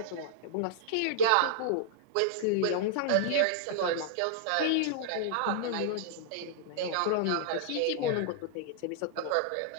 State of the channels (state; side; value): different; both; correlation -0.01